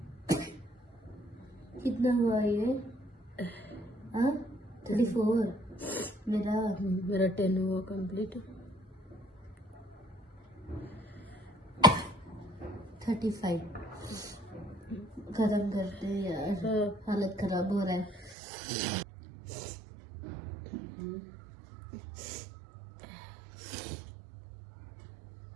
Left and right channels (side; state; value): left; drops out; at 18.4 s